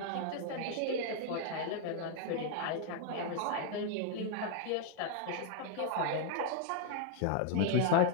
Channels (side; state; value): both; different; correlation 0.00